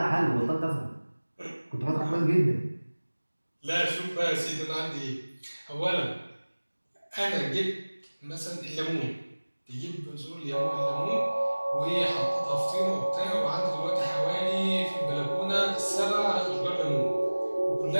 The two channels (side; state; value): both; inverted; correlation -1.00